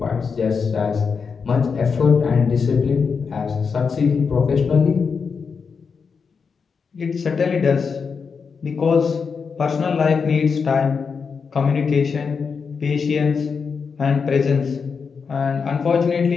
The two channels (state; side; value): quieter; right; 5.6 dB